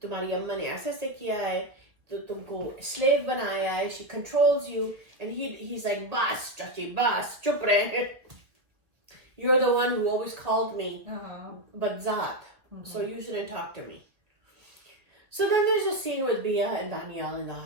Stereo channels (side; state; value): left; late; 1.6 ms